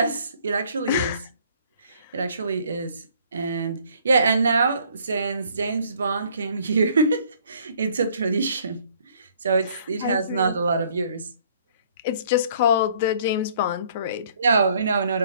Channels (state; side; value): inverted; both; correlation -0.60